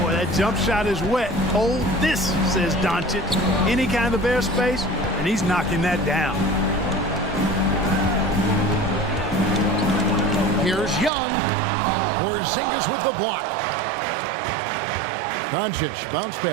that jump shot is wet. Hold this, says Doncic. Any kind of airspace, and he's knocking that down. Here's Young. Porzingis with the block. Doncic, bounce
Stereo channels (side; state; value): left; drops out; at 11.1 s